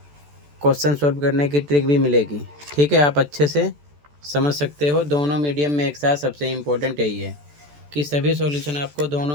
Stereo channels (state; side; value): late; left; 14 ms